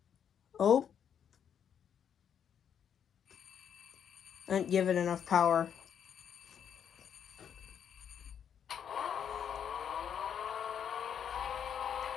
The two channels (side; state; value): right; quieter; 8.3 dB